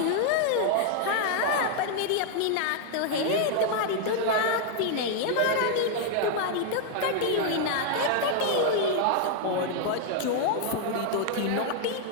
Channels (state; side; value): different; both; correlation 0.00